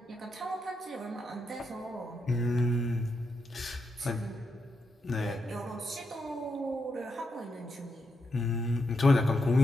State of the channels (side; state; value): both; normal; correlation 0.84